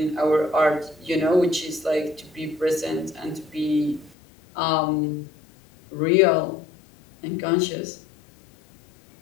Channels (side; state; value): right; drops out; at 4.2 s